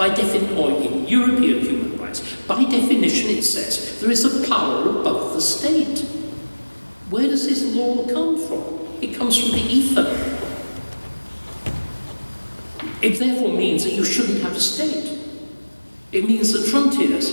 in European human rights, by definition it says there is a power above the state. Where does this law come from? It comes from the ether. It therefore means that you shouldn't have a state. It means that frontiers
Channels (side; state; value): both; inverted; correlation -1.00